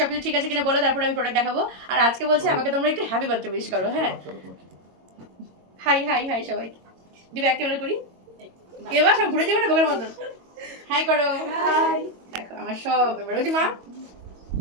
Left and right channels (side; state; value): left; late; 22 ms